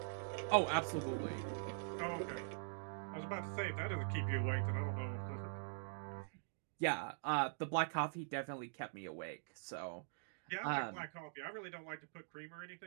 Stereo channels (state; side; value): silent; left; digital silence